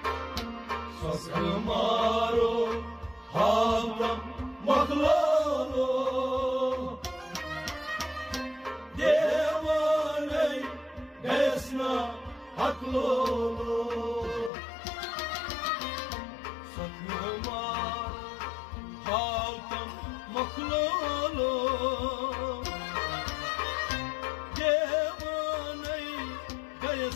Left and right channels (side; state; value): right; drops out; at 14.5 s